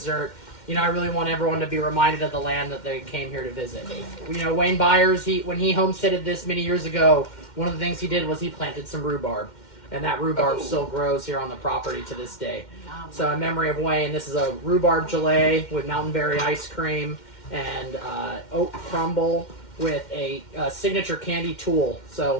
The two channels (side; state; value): right; late; 2.1 ms